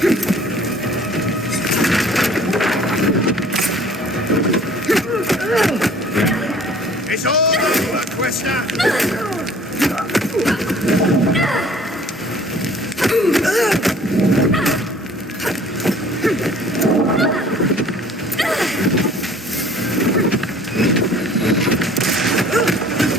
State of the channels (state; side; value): normal; both; correlation 0.52